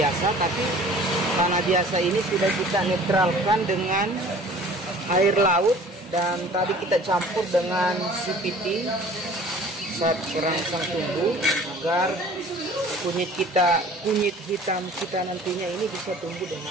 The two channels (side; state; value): both; normal; correlation 0.48